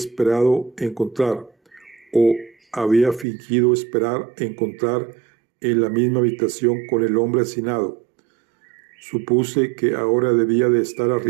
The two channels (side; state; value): left; drops out; at 3.2 s